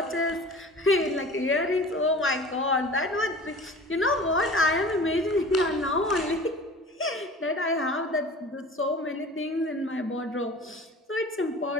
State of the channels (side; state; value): both; normal; correlation 0.40